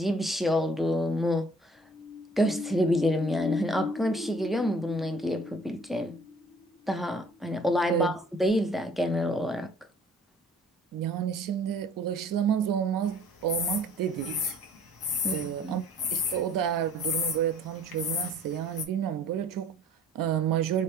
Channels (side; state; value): both; normal; correlation 0.54